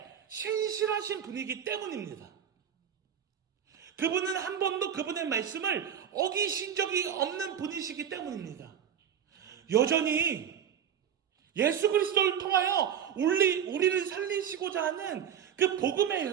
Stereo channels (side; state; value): left; quieter; 8.8 dB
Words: 신실하신 분이기 때문입니다. 그분은 한 번도 그분의 말씀을 어기신 적이 없는 분이시기 때문입니다. 여전히 예수 그리스도를 통하여 우리를 살리시고자 하는 그 복음의